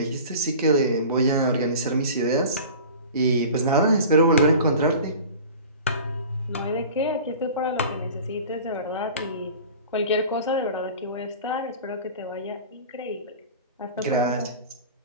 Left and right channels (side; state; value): both; inverted; correlation -0.39